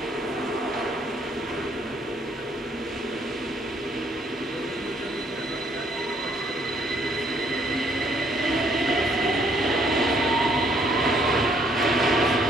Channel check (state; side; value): normal; both; correlation 0.67